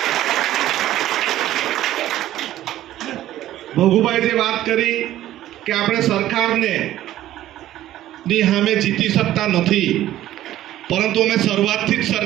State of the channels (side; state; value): left; quieter; 13.7 dB